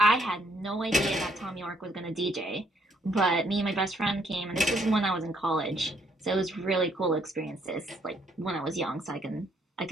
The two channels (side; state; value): both; normal; correlation 0.69